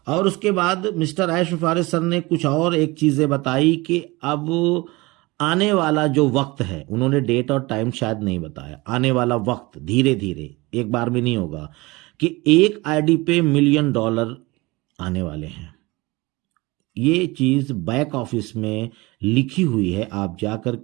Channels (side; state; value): left; quieter; 22.9 dB